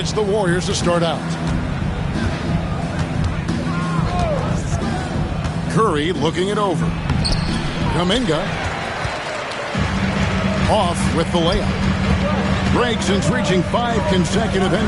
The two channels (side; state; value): both; identical; correlation 1.00